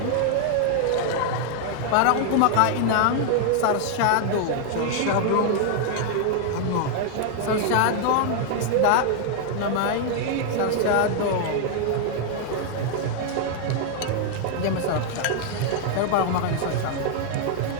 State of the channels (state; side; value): different; both; correlation 0.00